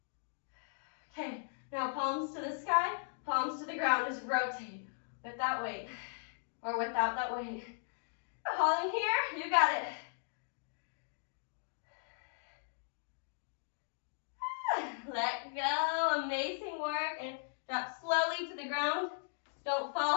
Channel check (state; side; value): silent; right; digital silence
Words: Okay, now palms to the sky, palms to the ground. Just rotate with that weight, or without that weight. Holding here, you got it. Let go, amazing work, and drop slowly to the ground. Don't